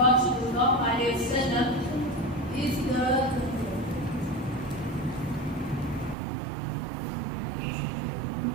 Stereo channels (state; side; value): drops out; left; at 6.2 s